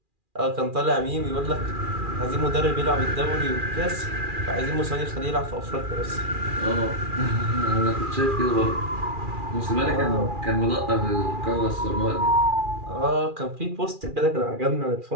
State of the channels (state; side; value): late; left; 2.4 ms